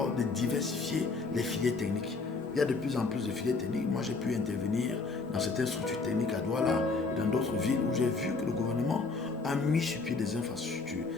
de diversifier les filières techniques. Il y a de plus en plus de filières techniques. Moi, j'ai pu intervenir dans certaines structures techniques à Douala et dans d'autres villes où j'ai vu que le gouvernement a mis sur pied des infrastructures.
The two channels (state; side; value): quieter; right; 4.1 dB